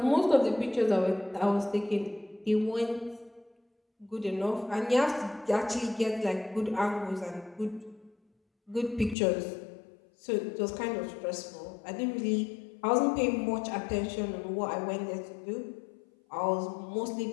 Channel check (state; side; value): drops out; right; at 9.2 s